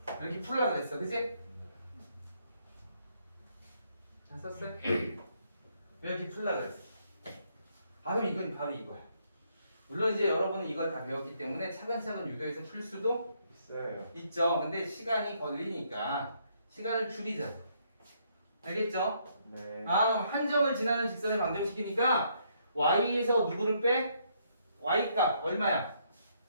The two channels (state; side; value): inverted; both; correlation -0.72